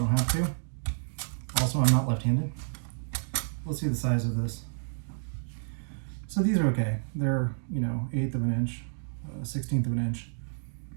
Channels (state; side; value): silent; left; digital silence